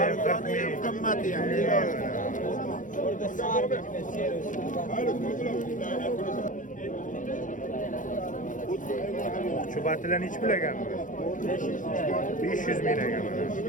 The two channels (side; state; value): right; late; 0.38 ms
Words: Arzoni ham qimmati ham. Oqchubatlar nech pul ekan bu? 500 ming ekan mana.